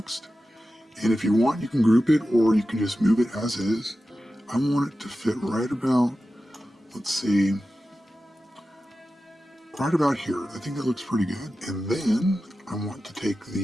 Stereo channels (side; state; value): both; normal; correlation 0.93